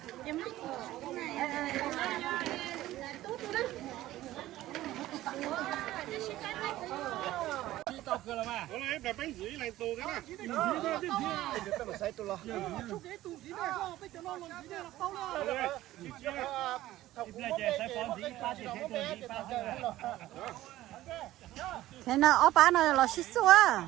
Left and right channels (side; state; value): left; quieter; 15.3 dB